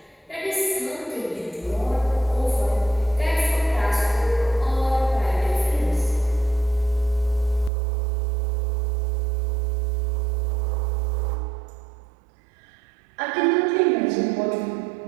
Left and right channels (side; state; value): left; drops out; at 7.7 s